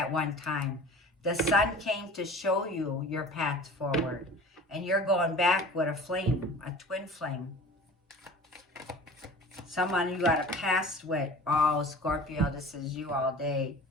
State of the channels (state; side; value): normal; both; correlation 0.41